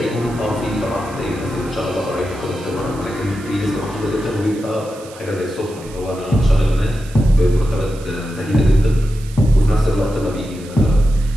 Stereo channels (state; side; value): noise; right; hiss, 20 dB below the sound